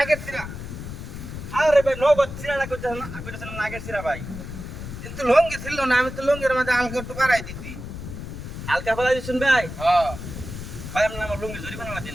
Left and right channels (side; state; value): left; noise; rumble, 9 dB below the sound